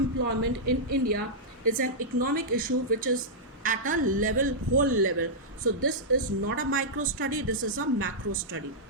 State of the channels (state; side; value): normal; both; correlation -0.10